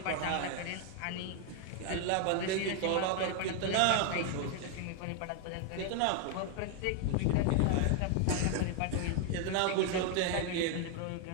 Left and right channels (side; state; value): both; different; correlation 0.00